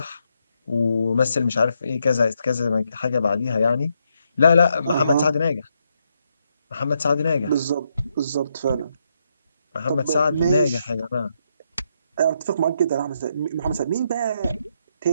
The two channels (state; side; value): inverted; both; correlation -0.79